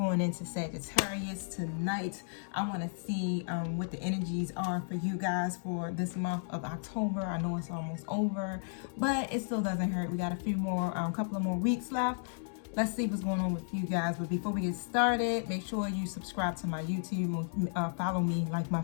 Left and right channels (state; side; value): silent; right; digital silence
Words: into Sagittarius tonight. I want to see what the energies are for you guys for this month of October. I know it's almost over, but it still doesn't hurt. We got a few more, couple of more weeks left. Let's see what's going on with you guys. But before we get started, make sure you subscribe to my YouTube, follow me, like my